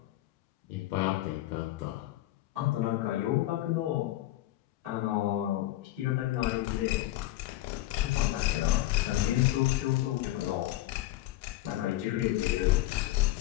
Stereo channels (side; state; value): right; quieter; 15.9 dB